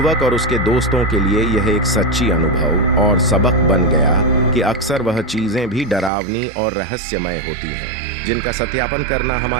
और उसके दोस्तों के लिए यह एक सच्ची अनुभव और सबक बन गया कि अक्सर वह चीजें भी डरावनी और रहस्यमय होती हैं, जिनका सत्यापन करना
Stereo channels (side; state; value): left; drops out; at 6.1 s